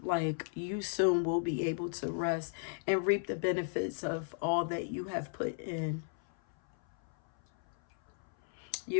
like you soon will be able to rest and reap the benefits of all that you have put in.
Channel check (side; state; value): right; silent; 54 dB below the other